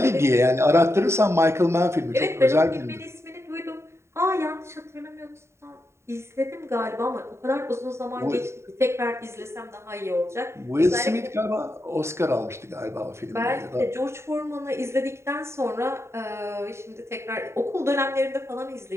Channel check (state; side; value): late; left; 0.13 ms